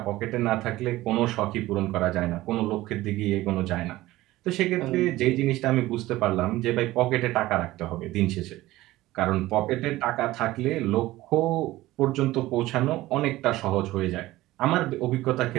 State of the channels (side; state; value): left; quieter; 17.2 dB